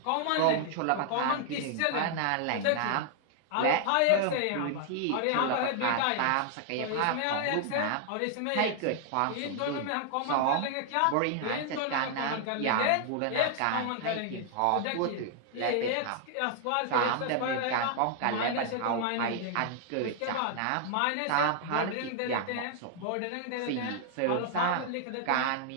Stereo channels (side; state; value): both; different; correlation 0.00